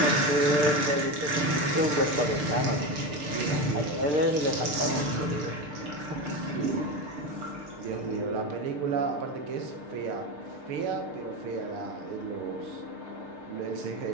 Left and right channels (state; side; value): late; left; 6.7 ms